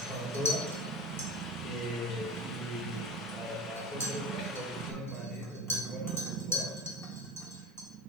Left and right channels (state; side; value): normal; both; correlation 0.31